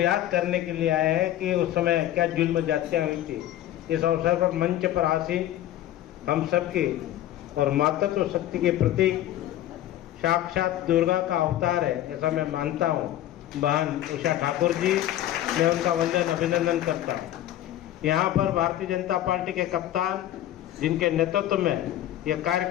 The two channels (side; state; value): right; quieter; 13.1 dB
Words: करने के लिए आए हैं कि उस समय क्या जुल्म जातियां हुई थी। इस अवसर पर मंच पर आसीन हम सबकी और मातृत्व शक्ति के प्रतीक साक्षात दुर्गा का अवतार है ऐसा मैं मानता हूँ बहन उषा ठाकुर जी। मैं उनका वंदन अभिनंदन करता हूँ। यहाँ पर भारतीय जनता पार्टी के कप्तान जिनके नेतृत्व में यह